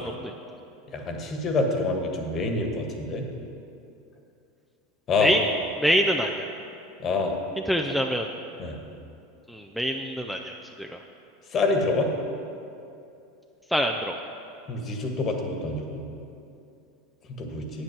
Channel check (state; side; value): normal; both; correlation 0.52